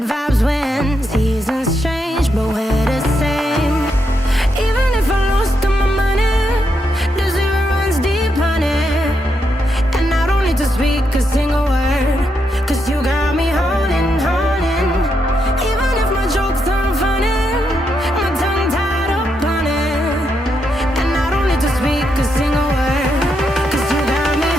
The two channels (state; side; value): normal; both; correlation 0.81